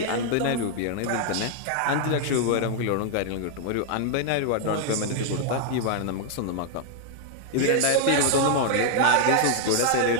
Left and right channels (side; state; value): both; different; correlation 0.00